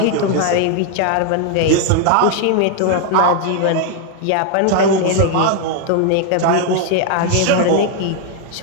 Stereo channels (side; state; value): both; different; correlation 0.00